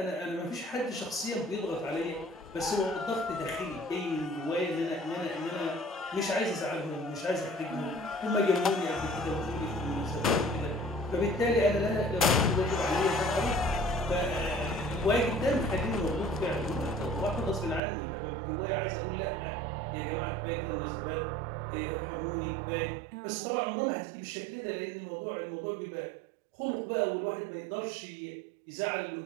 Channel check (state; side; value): drops out; left; at 17.8 s